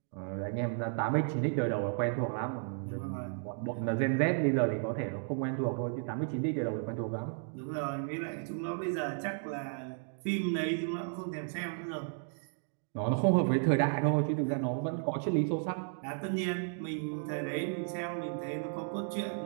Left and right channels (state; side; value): silent; left; 55 dB below the other